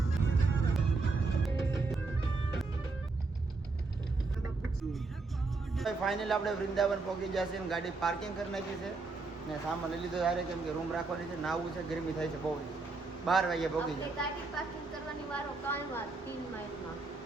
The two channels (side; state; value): left; quieter; 3.8 dB